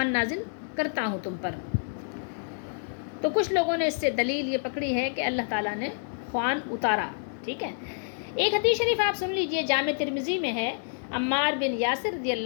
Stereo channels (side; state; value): right; silent; digital silence